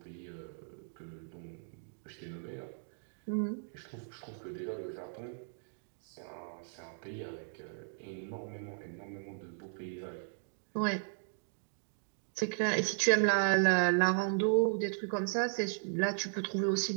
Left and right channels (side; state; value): left; silent; digital silence